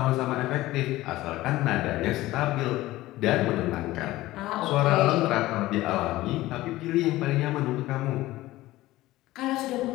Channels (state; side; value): quieter; right; 17.2 dB